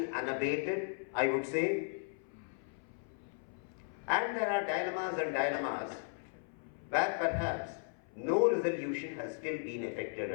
unabated, I would say. And there are dilemmas where perhaps no resolution has still been effected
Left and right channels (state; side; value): silent; right; 54 dB below the other